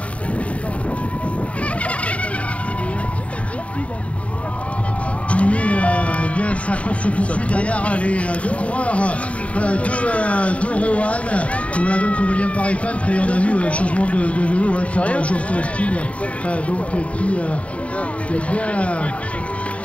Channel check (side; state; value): right; late; 0.065 ms